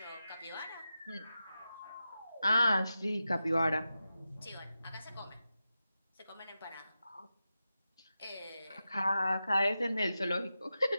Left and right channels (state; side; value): inverted; both; correlation -0.91